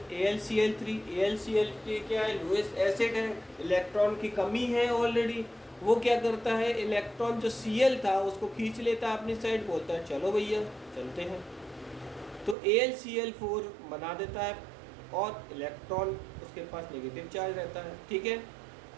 AlCl3. AlCl3 क्या है? लुईस एसिड है, इलेक्ट्रॉन की कमी है ऑलरेडी। वो क्या करता है, इलेक्ट्रॉन जो Cl था उसको खींच लेता है अपनी साइड, बोलता है चलो भैया चलते हैं, तो AlCl4 बना देता है और इलेक्ट्रॉन उसके पास नेगेटिव चार्ज रहता है। ठीक है,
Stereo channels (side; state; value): left; drops out; at 12.6 s